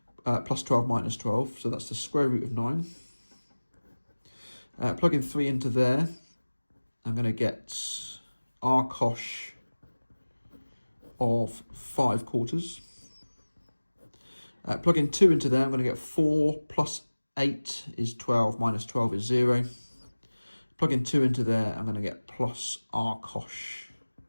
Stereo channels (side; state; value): both; inverted; correlation -1.00